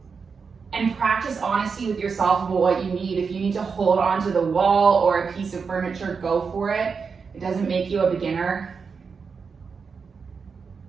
And practice honesty with yourself about what you need. If you need to hold onto the wall or a piece of furniture, go for it. It doesn't make you a beginner.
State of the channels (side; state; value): left; quieter; 5.5 dB